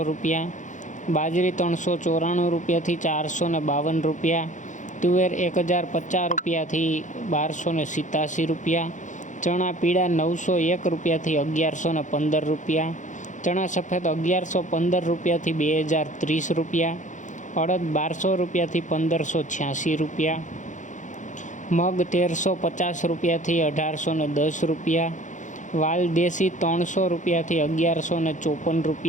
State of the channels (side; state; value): right; late; 0.36 ms